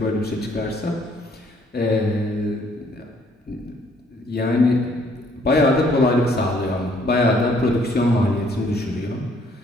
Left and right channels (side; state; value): both; normal; correlation 0.64